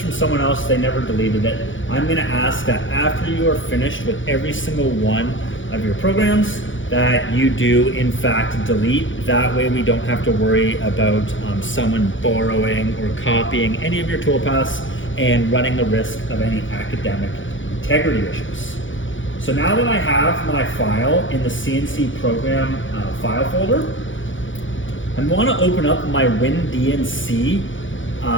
from someone else. They never deleted it. I'm going to ask that after you are finished with every single one of your programs, that you do in fact delete. That way we don't have to worry about someone borrowing or copying any of your toolpaths and running the risk of any academic integrity issues. So now that I have my file in the CNC program file folder, I want to open up my WinDNC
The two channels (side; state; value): right; late; 0.56 ms